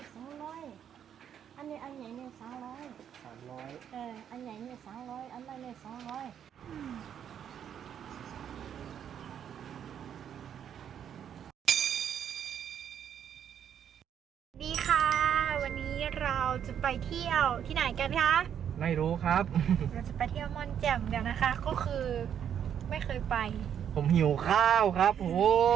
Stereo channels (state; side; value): quieter; left; 9.0 dB